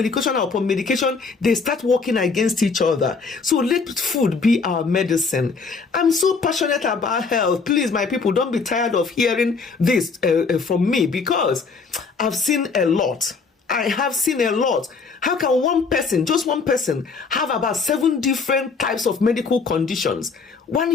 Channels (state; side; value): quieter; right; 4.7 dB